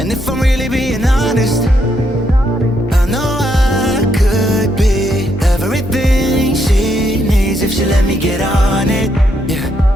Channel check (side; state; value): both; normal; correlation 0.77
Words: if I'm really being honest, I know I could be everything she needs if she let me get on it. Yeah.